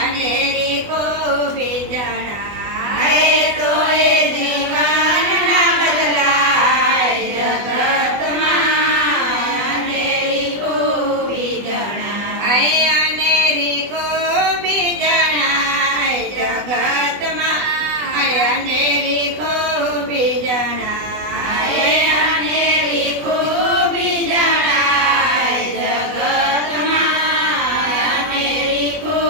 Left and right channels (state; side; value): late; left; 20 ms